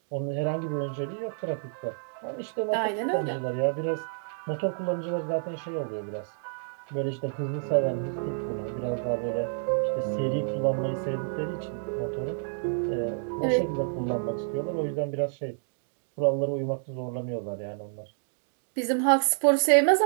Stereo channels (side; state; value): left; silent; digital silence